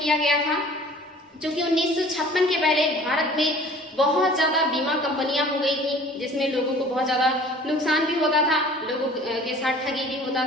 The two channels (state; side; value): normal; both; correlation 0.48